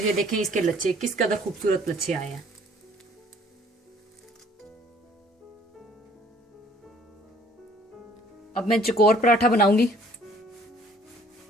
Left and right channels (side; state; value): both; normal; correlation 0.57